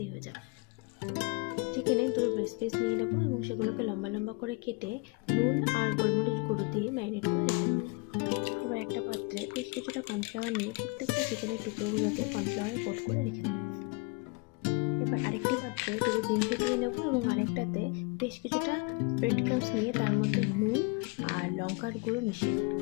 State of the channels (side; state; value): right; quieter; 28.7 dB